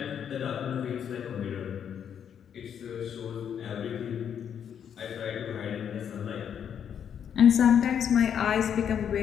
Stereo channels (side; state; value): right; quieter; 8.4 dB